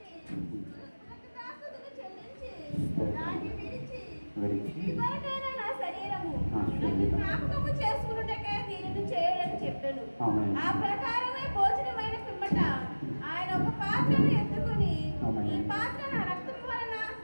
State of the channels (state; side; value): inverted; both; correlation -1.00